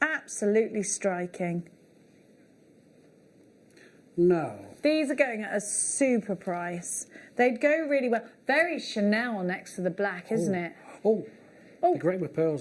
striking. No. These are going at a super price. They'd go really well. Very Chanel next to the black, isn't it? Oh, they're great with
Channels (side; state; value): both; identical; correlation 1.00